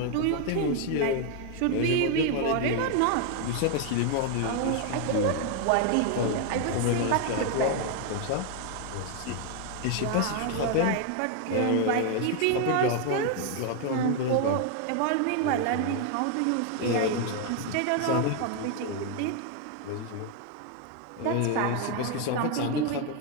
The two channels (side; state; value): both; different; correlation 0.01